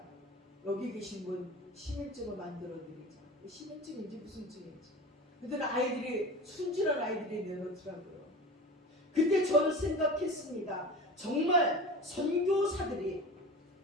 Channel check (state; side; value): normal; both; correlation 0.34